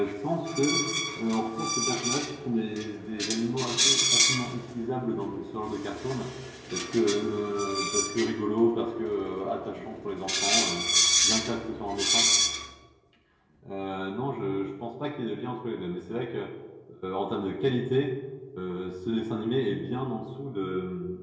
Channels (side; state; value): both; identical; correlation 1.00